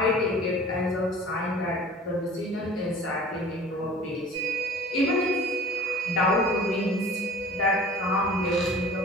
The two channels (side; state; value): both; normal; correlation 0.44